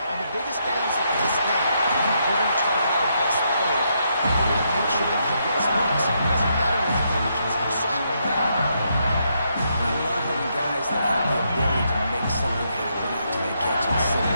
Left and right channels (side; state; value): both; inverted; correlation -0.77